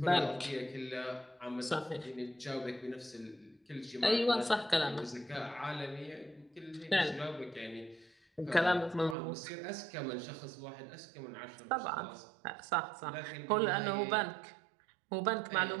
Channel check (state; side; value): drops out; left; at 9.2 s